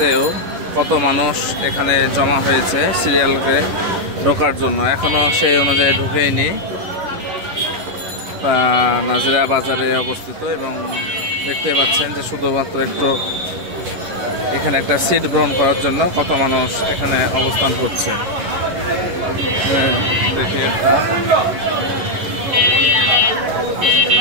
কত মানুষ এখানে জমা হয়েছে সিরিয়ালকে ঢোকার জন্য। এখনো সেই অনুযায়ী ঢুকেইনি। নাজিরা বাজারে অবস্থিত এবং দেখতে পাচ্ছেন যে শুধুমাত্র একটু এখানে একটা সিট গ্রহণ করার জন্য কত মানুষ এখানে অবস্থান করছে। দেখি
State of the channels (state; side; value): late; left; 11 ms